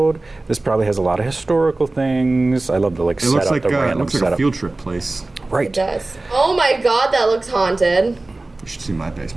This probably has a lot of historical things. I love the It looks like the random it looks like setup. a field trip place. It Right. does. Oh my god, that looks haunted. You should see my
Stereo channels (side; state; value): left; quieter; 3.0 dB